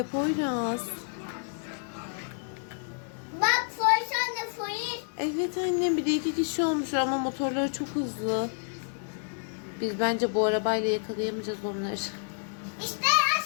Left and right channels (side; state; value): right; silent; digital silence